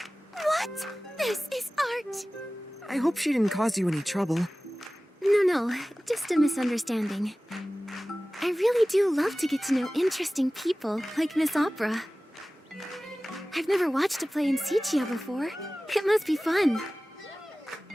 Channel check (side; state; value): both; normal; correlation 0.97